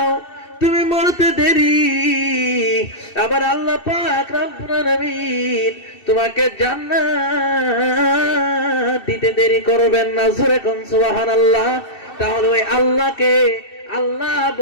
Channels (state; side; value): late; right; 2.6 ms